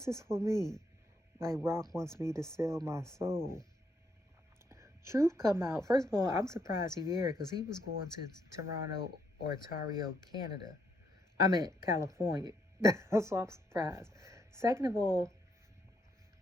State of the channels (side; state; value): both; normal; correlation 0.75